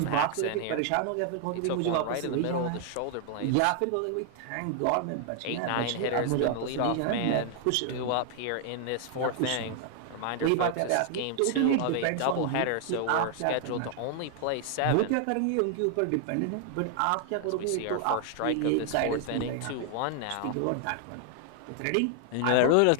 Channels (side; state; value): both; different; correlation 0.00